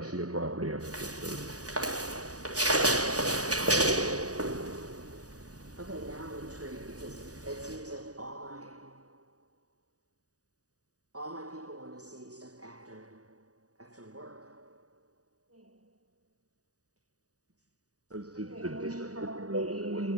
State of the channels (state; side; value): late; left; 0.67 ms